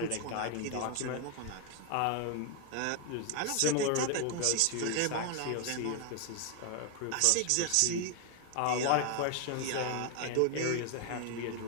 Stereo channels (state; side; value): different; both; correlation 0.01